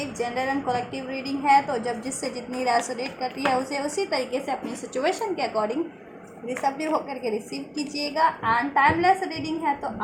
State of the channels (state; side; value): identical; both; correlation 1.00